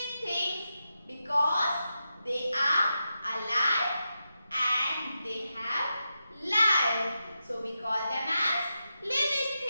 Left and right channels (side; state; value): both; inverted; correlation -0.89